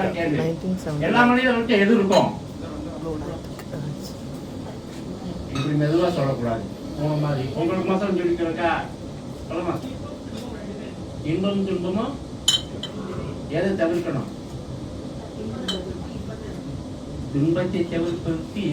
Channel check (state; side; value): identical; both; correlation 1.00